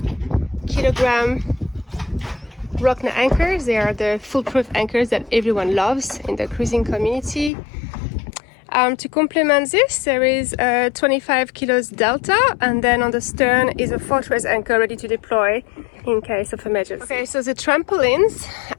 kilogram Rockna anchors. They are the foolproof anchors that everyone loves in the cruising community. To complement this, there is a 25 kilos Delta, and then on the stern is a fortress anchor ready to deploy in case of emergency. Okay, so the trampolines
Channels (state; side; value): drops out; right; at 7.5 s